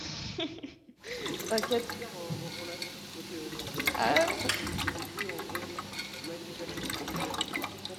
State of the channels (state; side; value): identical; both; correlation 1.00